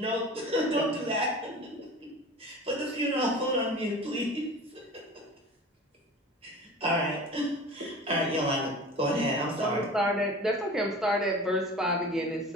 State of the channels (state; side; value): normal; both; correlation 0.38